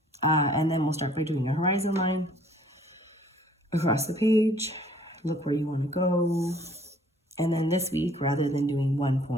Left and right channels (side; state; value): both; normal; correlation 0.57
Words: And then we'll start by doing a horizon line across the page. Look where you want to go. And then this week, rather than doing 1